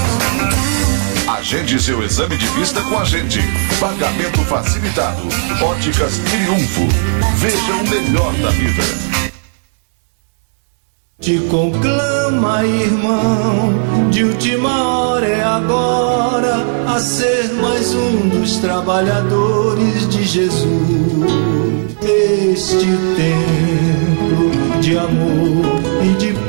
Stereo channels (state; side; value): silent; left; digital silence